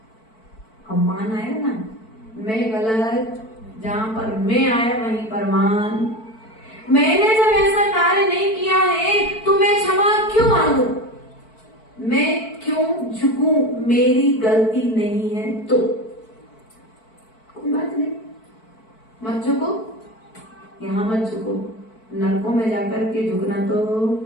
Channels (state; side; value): late; right; 4.5 ms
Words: अब मान आया ना, मैं गलत, जहां पर मैं आया वहीं पर मान। मैंने जब ऐसा कार्य नहीं किया है तो मैं क्षमा क्यों मांगू? मैं क्यों झुकूं? मेरी गलती नहीं है तो कोई बात नहीं, मत झुको, यहाँ मत झुको, नरकों में जाकर के झुकना तो